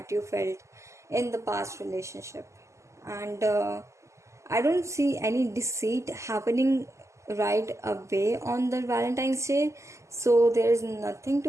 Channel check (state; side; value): late; left; 0.14 ms